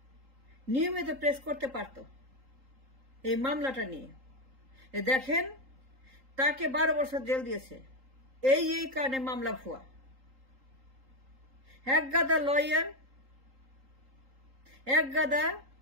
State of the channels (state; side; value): late; left; 3.8 ms